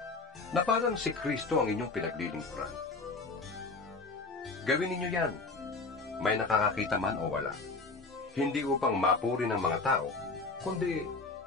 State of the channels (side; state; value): right; quieter; 3.8 dB